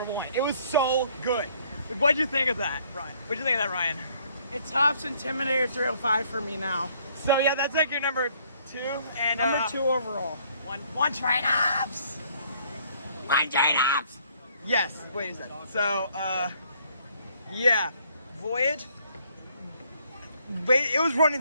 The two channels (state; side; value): inverted; both; correlation -0.64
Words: 1. It was so good. What'd you think of that, Ryan? What'd you think of that, Ryan? It tops Intimidator 305 for me now. So yeah, that's like your number 2, and Number 2 overall. one trade-ups. One trade-ups. Yes. Wait a second. So yeah, Voyage. Wait, it was